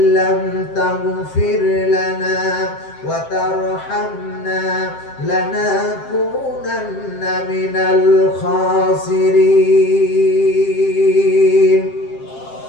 তাগফির লানা ওয়া তারহামনা লানাকুনান্না মিনাল খাসিরিন।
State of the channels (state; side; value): late; right; 7.6 ms